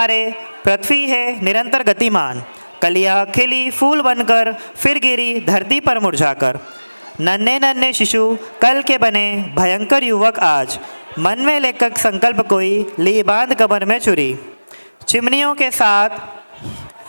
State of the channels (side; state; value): both; inverted; correlation -1.00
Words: पृथ्वी है निरंतर गतिमान, कलियां खिली फूल बनकर फिर गिरी धरती पर मुरझाकर। नन्हे नन्हे शिशु कल के बने भयंकर युवक आज, मन में लेकर संकल्प कोई ली बांध कमर में चुरी। चिमनियों के साथ